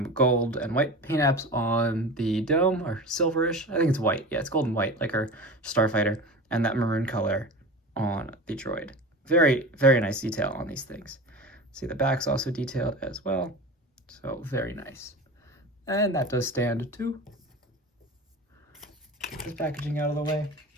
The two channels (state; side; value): normal; both; correlation 0.32